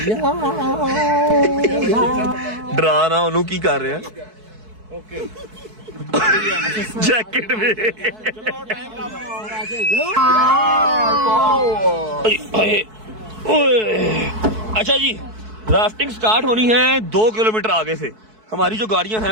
डरा ना उन्होंने की कर रहे हैं। ओके जैकेट में अच्छा जी, राफ्टिंग स्टार्ट होनी है 2 किलोमीटर आगे से। हमारी जो गाड़ियां हैं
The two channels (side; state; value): left; late; 4.6 ms